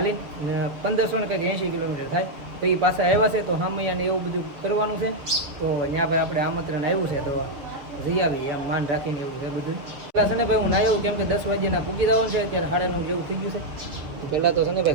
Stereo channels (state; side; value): late; left; 7.2 ms